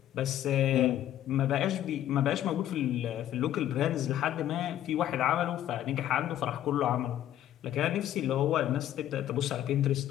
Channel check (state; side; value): quieter; right; 12.0 dB